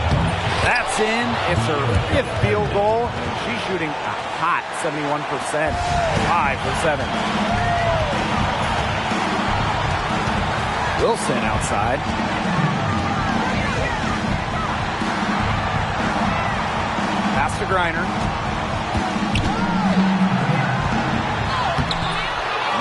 That's in. It's her 5th field goal. She's shooting a hot 71%. 5 for 7. Wilson outside. Pass to Griner.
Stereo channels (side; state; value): both; identical; correlation 1.00